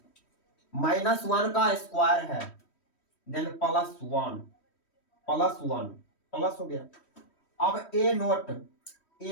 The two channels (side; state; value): right; late; 3.1 ms